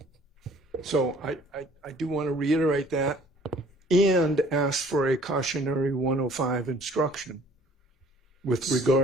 So I do want to reiterate that and ask for a cautionary 105 instruction with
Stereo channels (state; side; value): normal; both; correlation 0.54